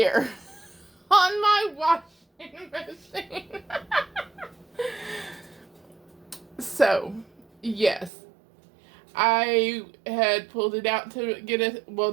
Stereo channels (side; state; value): left; drops out; at 8.1 s